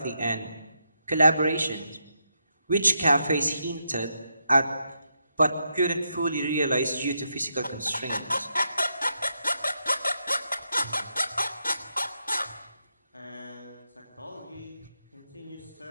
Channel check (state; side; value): inverted; both; correlation -0.82